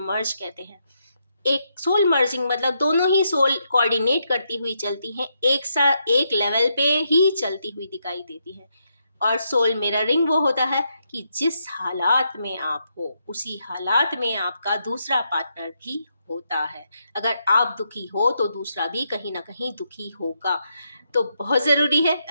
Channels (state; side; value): inverted; both; correlation -0.80